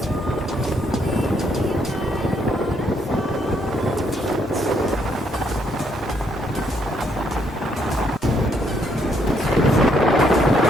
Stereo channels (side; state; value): both; normal; correlation 0.72